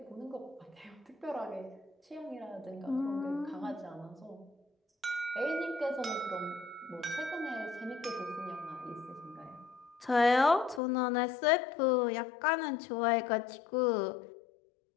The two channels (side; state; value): right; drops out; at 10.8 s